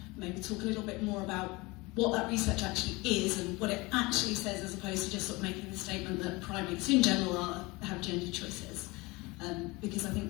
maybe talk a little bit more about what that research actually is and what it actually says, as opposed to just sort of making the statement that primates in general have gender choices. Because I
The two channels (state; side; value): quieter; right; 23.9 dB